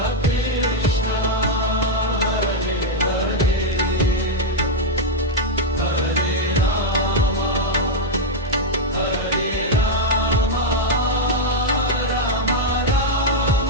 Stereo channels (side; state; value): both; normal; correlation -0.01